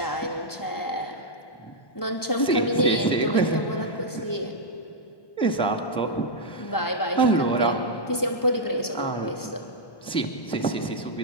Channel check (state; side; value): late; right; 1.1 ms